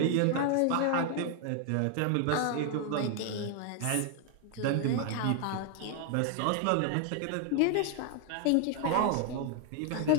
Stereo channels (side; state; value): both; different; correlation 0.00